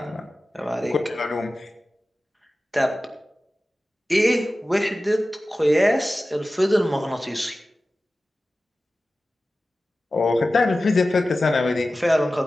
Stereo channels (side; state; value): both; normal; correlation 0.95